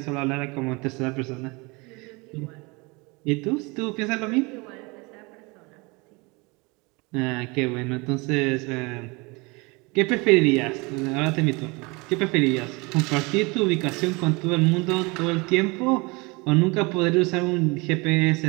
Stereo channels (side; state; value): left; quieter; 26.8 dB